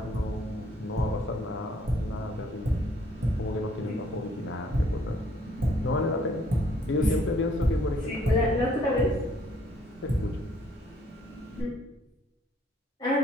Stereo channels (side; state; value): both; normal; correlation 0.64